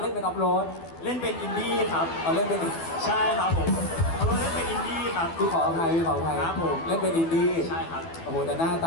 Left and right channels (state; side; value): late; right; 12 ms